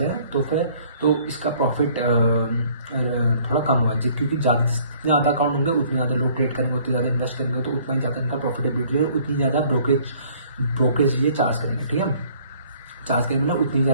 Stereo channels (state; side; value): inverted; both; correlation -0.57